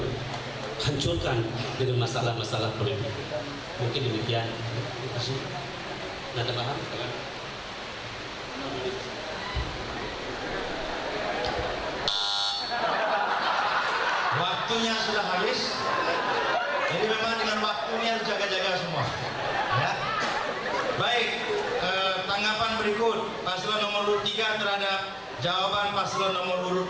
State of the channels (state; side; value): identical; both; correlation 1.00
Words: dengan masalah-masalah politik. Mungkin demikian. Terima kasih. Nah, tambahan. Waktu waktunya sudah habis. Jadi memang dengan waktu ini harus jaga-jaga semua. Ya. Baik, tanggapan berikut paslon nomor urut 3 terhadap jawaban paslon nomor urut